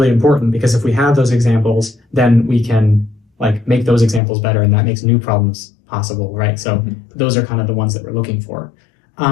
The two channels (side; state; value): right; drops out; at 4.2 s